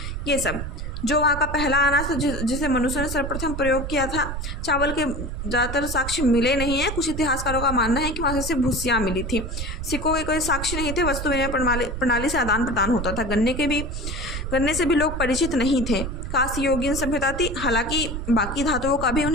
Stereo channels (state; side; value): noise; right; rumble, 5 dB below the sound